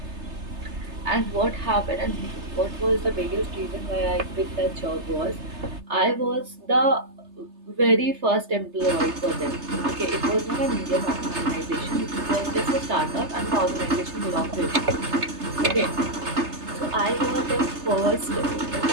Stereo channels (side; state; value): left; late; 3.3 ms